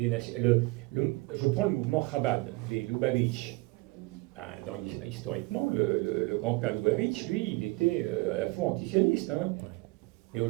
nations. Je prends le mouvement Chabad, les Lubavitch. Historiquement, le grand-père Lubavitch, lui, il était à la fois antisioniste. Hein. Mais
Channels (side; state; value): left; quieter; 23.6 dB